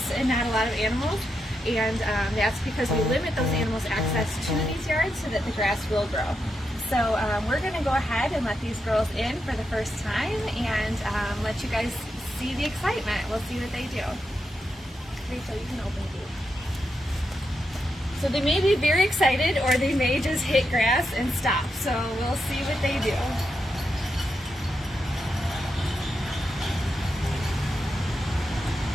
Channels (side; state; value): both; normal; correlation 0.85